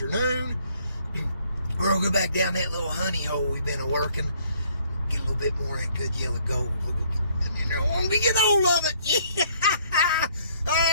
We're going to go back down that little honey hole we've been working. Get a little bit more of that good yellow gold. And then I want to get hold of it. Yeah.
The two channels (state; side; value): inverted; both; correlation -0.64